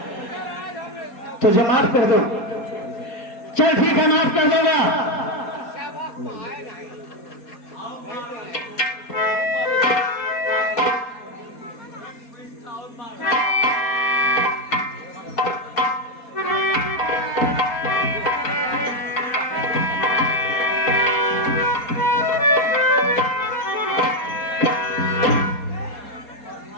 तुझे माफ कर दो, चल ठीक है, माफ कर दूंगा।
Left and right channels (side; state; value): right; late; 4.2 ms